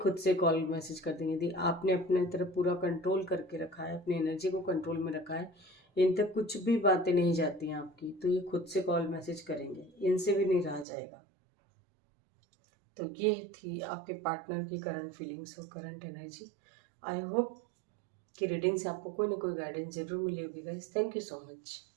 से कॉल मैसेज कर देंगे। यदि आपने अपने तरफ पूरा कंट्रोल करके रखा है, अपनी एनर्जी को कंट्रोल में रखा है, इन तक कुछ भी बातें नहीं जाती हैं आपकी, तो ये खुद से कॉल मैसेज करेंगे, इनसे भी नहीं रहा जाएगा। तो ये थी आपके पार्टनर की करंट फीलिंग्स और करंट एनर्जी। आई होप कि रीडिंग से आपको कोई ना कोई गाइडेंस जरूर मिली होगी guys. Thank you so much.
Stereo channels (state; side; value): drops out; left; at 10.9 s